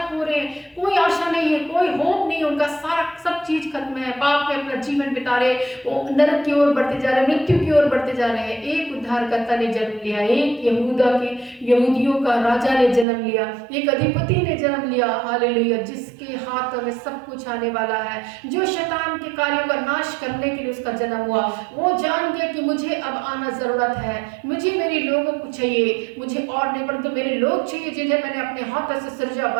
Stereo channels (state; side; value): drops out; left; at 13.1 s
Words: पूरे, कोई आशा नहीं है, कोई होप नहीं, उनका सारा सब चीज खत्म है, पाप में अपना जीवन बिता रहे, वो नरक की ओर बढ़ते जा रहे हैं, मृत्यु की ओर बढ़ते जा रहे हैं। एक उद्धारकर्ता ने जन्म लिया, एक यहूदियों का राजा ने जन्म लिया, एक अधिपति ने जन्म लिया। हालेलुया। जिसके हाथों में सब कुछ आने वाला है, जो शैतान के कार्यों का नाश करने के लिए उसका जन्म हुआ। वो जान गया कि मुझे अब आना जरूरत है, मुझे मेरे लोगों को चाहिए, मुझे और नहीं परंतु मेरे लोग चाहिए जिन्हें मैंने अपने हाथों से सृजा